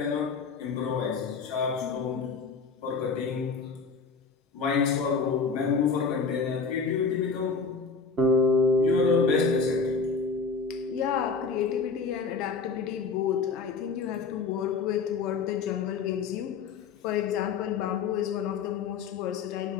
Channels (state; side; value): quieter; right; 5.0 dB